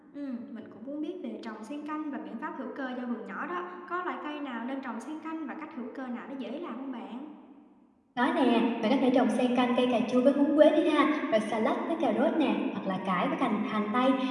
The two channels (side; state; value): both; identical; correlation 1.00